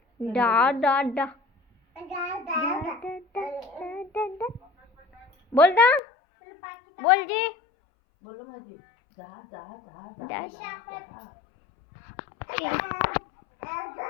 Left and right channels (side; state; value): right; drops out; at 6.0 s